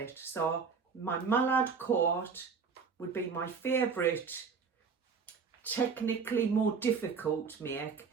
So my mallard coat would be my favourite, technically more difficult to make,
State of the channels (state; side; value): quieter; left; 5.6 dB